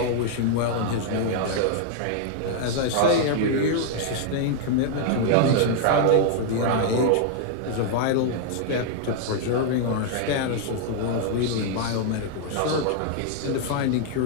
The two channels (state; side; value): different; both; correlation -0.01